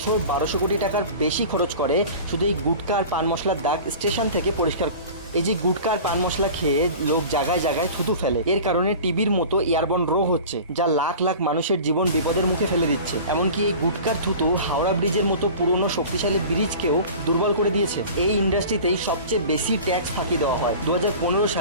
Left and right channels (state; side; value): inverted; both; correlation -0.38